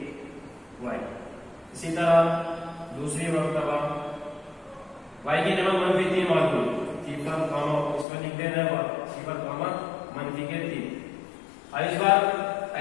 y। इसी तरह दूसरी मर्तबा y की जगह मंफी 3 मालूम, 0, इसमें लिख देना है 0, मंफी के 3। अब इस बार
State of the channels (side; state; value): right; drops out; at 8.1 s